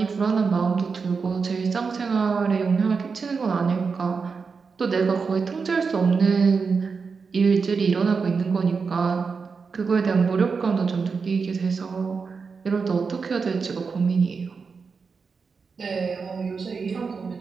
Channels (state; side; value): quieter; left; 5.1 dB